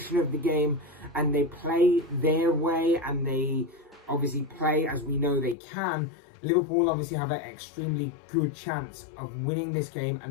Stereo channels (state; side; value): drops out; right; at 5.6 s